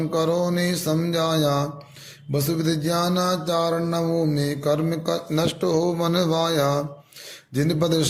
ने समझाया, वसुविध ज्ञानाचार नवों में कर्म नष्ट हो मन वाया। जिन पद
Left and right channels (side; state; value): both; identical; correlation 1.00